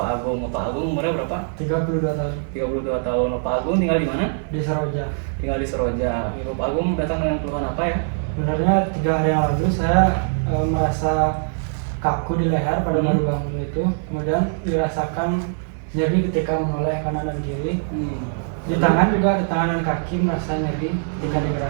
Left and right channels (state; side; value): silent; left; digital silence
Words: Agung. Bapak Agung umurnya berapa? 32 tahun. 32 tahun. Bapak Agung tinggal di mana? Di Seroja. Tinggal di Seroja. Bapak Agung datang dengan keluhan apa ya? Sebenarnya 3 hari yang lalu saya merasa kaku di leher pada baru bangun itu. Kemudian dirasakan nyeri ketika menoleh kanan dan kiri. Di tangan juga, di tangan dan kaki merasa nyeri ketika